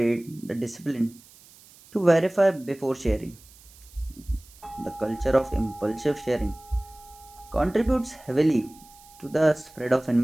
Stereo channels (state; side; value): noise; right; hiss, 24 dB below the sound